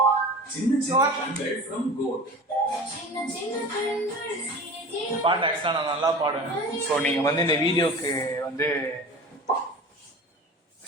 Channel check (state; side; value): normal; both; correlation 0.36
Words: சின்ன சின்ன கண்கள் from goat. பாட்டு ஆக்சுவலாக நான் நல்லா பாடுவேன். ஸோ நீங்கள் வந்து இந்த வீடியோக்கு வந்து